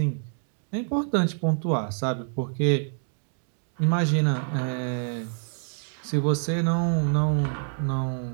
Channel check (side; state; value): left; silent; 60 dB below the other